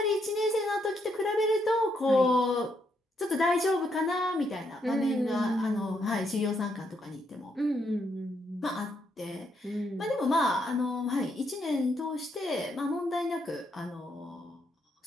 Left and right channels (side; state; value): both; normal; correlation 0.76